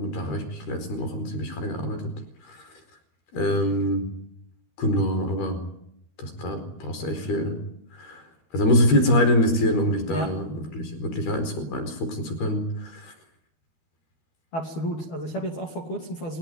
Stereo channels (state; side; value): late; right; 13 ms